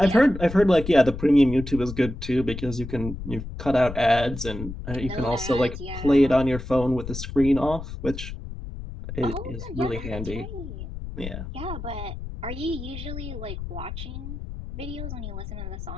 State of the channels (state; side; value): noise; left; rumble, 9 dB below the sound